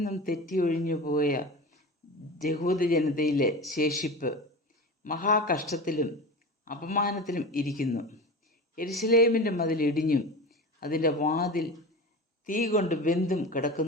തെറ്റിയൊഴിഞ്ഞു പോയ യഹൂദ ജനതയിലെ ശേഷിപ്പ് മഹാകഷ്ടത്തിലും അപമാനത്തിലും ഇരിക്കുന്നു. യെരുശലേമിൻ്റെ മതിൽ ഇടിഞ്ഞും അതിൻ്റെ വാതിൽ തീ കൊണ്ട് വെന്തും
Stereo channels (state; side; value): normal; both; correlation 0.29